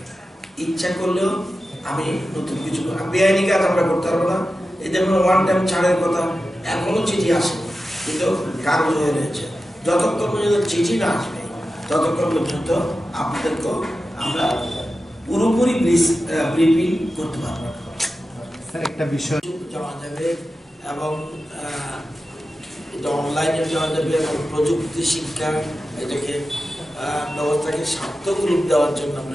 ইচ্ছা করলেও আমি নতুন কিছু বেআইনি কাজ আমরা করতে পারবো না। এই যেমন 1 টাইম ছাড়ের কথা, এখনো চিঠি আসে, কিন্তু কাগজ হয়ে রয়েছে। যতক্ষণ পর্যন্ত চিঠি না আসবে, ততক্ষণ পর্যন্ত আপনাদেরকে আমরা পুরোপুরি ব্রিফিং করতে পারবো। স্যার, একটা বিষয় জানা যাবে এবং এটা অনলাইনে দেওয়া যাবে এবং প্রযুক্তি শিক্ষা এটাকে ব্যবস্থাকে সার্থক রূপ দেওয়ার জন্য আমরা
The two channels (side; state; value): both; normal; correlation 0.92